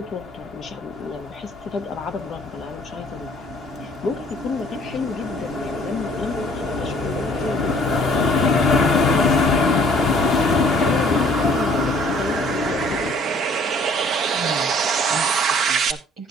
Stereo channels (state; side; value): normal; both; correlation 0.57